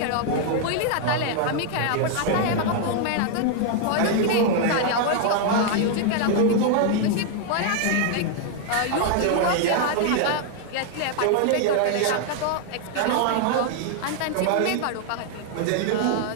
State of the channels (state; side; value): different; both; correlation 0.00